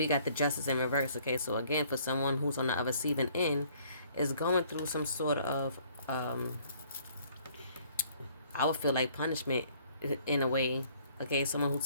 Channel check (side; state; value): both; inverted; correlation -0.60